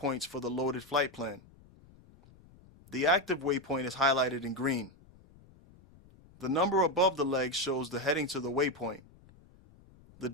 for the loaded flight plan. The active waypoint is highlighted in green. The number above the legs shows the heading to the waypoint. The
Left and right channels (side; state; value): left; noise; rumble, 25 dB below the sound